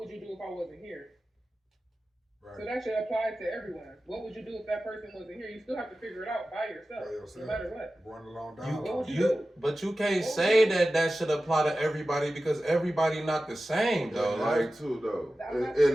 you do if I wasn't here? Right. So that should apply to everyone. What would you do if that person wasn't here? You still have to figure it out by yourself. No matter what. Going along down. What would you do? But you can't say that should apply to everybody because everybody not the same though.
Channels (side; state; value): both; normal; correlation 0.95